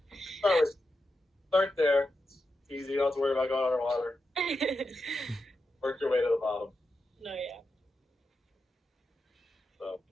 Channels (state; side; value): normal; both; correlation 0.88